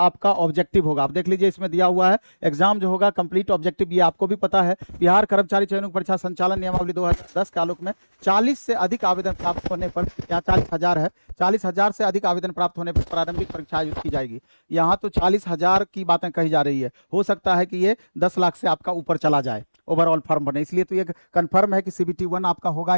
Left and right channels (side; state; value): both; inverted; correlation -1.00